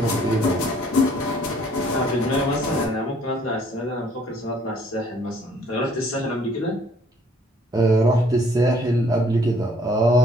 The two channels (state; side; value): normal; both; correlation 0.60